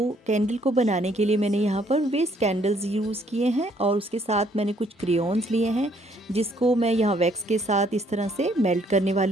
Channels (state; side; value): normal; both; correlation 0.66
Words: कैंडल को बनाने के लिए मैंने यहाँ पर वेस्ट कैंडल्स यूज़ किए हैं और उसके साथ मैंने कुछ क्रेयॉन्स लिए हैं जिसको मैं यहाँ वैक्स के साथ इस तरह से मेल्ट करने